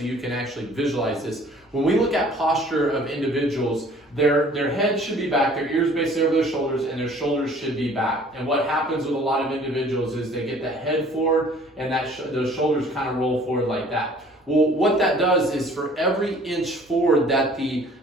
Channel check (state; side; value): normal; both; correlation 0.53